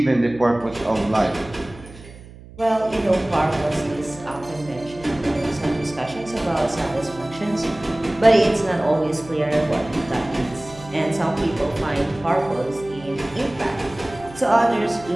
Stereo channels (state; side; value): noise; right; hum, 19 dB below the sound